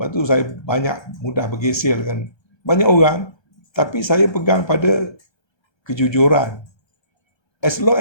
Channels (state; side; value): late; right; 1.3 ms